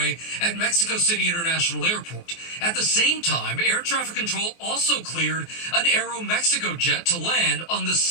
at Mexico City International Airport. At the same time, air traffic control also cleared an Aeromexico jet to land on the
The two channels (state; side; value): late; right; 24 ms